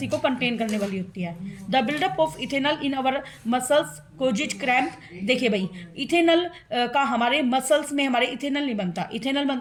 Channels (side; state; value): both; identical; correlation 1.00